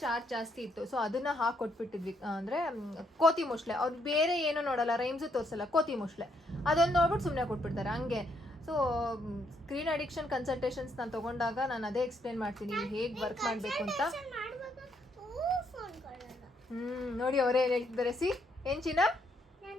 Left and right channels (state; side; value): normal; both; correlation 0.74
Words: ಚಾರ್ಜ್ ಜಾಸ್ತಿ ಇತ್ತು. ಸೊ ಅದನ್ನು ಹಾಕೊಟ್ಬಿಟ್ಟಿದ್ವಿ. ಅಂದರೆ ಕೋತಿ ಮೊಸಳೆ, ಅವ್ರು ಬೇರೆ ಏನೂ ನೋಡಲ್ಲ, ರೈಮ್ಸು ತೋರಿಸಲ್ಲ, ಕೋತಿ ಮೊಸಳೆ ಅದೊಂದು ನೋಡ್ಬಿಟ್ಟು ಸುಮ್ಮನೆ ಕೊಟ್ಬಿಡ್ತಾರೆ ಹಂಗೆ. ಸೊ ಸ್ಕ್ರೀನ್ ಅಡಿಕ್ಷನ್ ಕನ್ಸಲ್ಟೇಷನ್ಸ್ ನಾನು ತೊಗೊಂಡಾಗ ನಾನು ಅದೇ ಎಕ್ಸ್ಪ್ಲೇನ್ ಮಾಡ್ತೀನಿ ಹೇಗೆ ವರ್ಕ್ ಮಾಡಬೇಕು ಅಂತ. ನೋಡಿ ಅವರೇ ಏನು ಹೇಳ್ತಿದ್ದಾರೆ. ಏನು ಚಿನ್ನ?